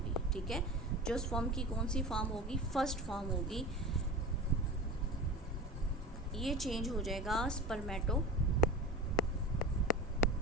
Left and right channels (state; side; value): normal; both; correlation 0.32